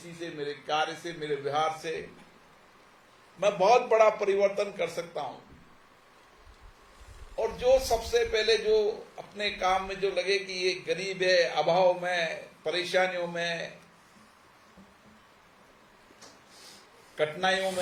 से, मेरे कार्य से, मेरे व्यवहार से मैं बहुत बड़ा परिवर्तन कर सकता हूं। और जो सबसे पहले जो अपने काम में जो लगे कि ये गरीब है, अभाव में, परेशानियों में, कठिनाइयों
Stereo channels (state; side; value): identical; both; correlation 1.00